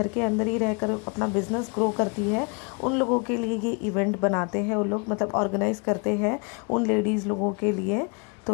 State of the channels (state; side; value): quieter; right; 33.3 dB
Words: के अंदर ही रहकर अपना बिजनेस ग्रो करती है, उन लोगों के लिए ये इवेंट बनाते हैं। उन लोग मतलब ऑर्गेनाइज करते हैं उन लेडीज़ लोगों के लिए।